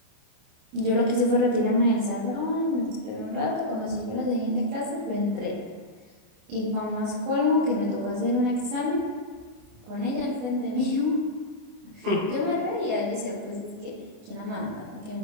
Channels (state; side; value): late; left; 28 ms